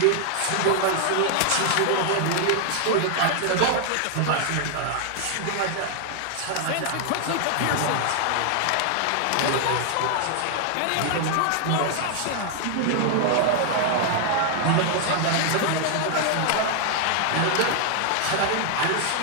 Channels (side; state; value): both; different; correlation 0.00